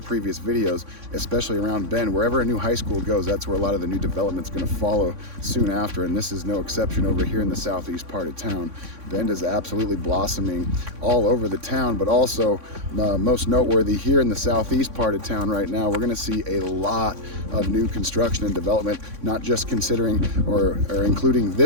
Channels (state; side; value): late; left; 3.6 ms